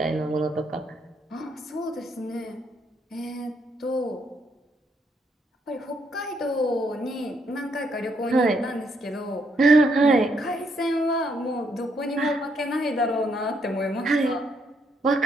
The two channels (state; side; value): normal; both; correlation 0.74